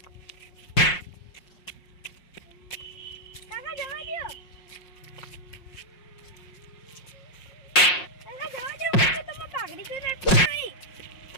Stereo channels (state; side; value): late; right; 5.5 ms